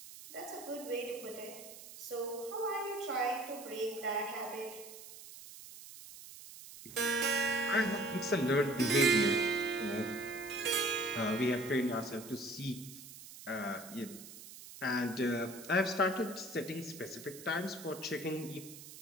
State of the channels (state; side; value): noise; right; hiss, 15 dB below the sound